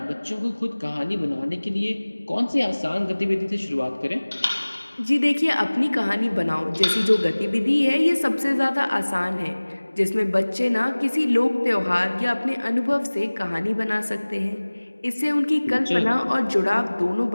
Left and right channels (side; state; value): both; inverted; correlation -1.00